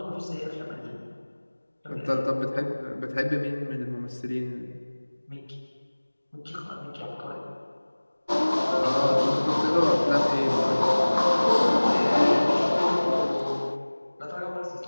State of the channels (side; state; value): both; inverted; correlation -1.00